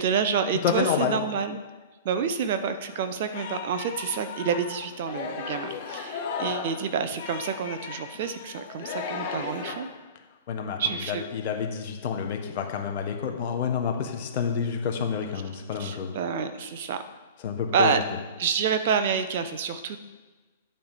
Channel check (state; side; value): inverted; both; correlation -0.33